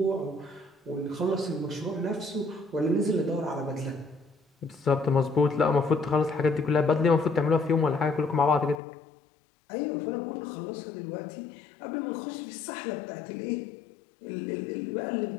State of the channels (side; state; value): right; drops out; at 8.8 s